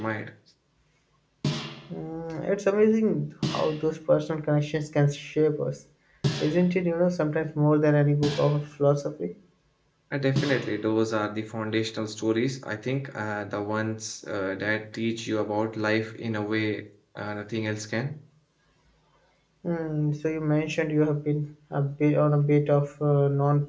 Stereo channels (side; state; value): both; identical; correlation 1.00